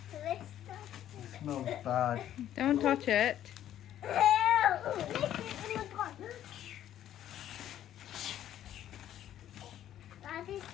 It smells bad. Don't touch it. That is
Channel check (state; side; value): quieter; right; 11.5 dB